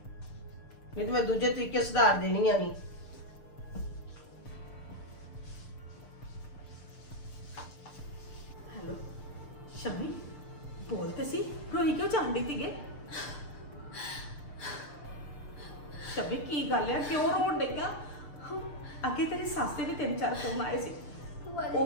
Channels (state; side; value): late; right; 6.7 ms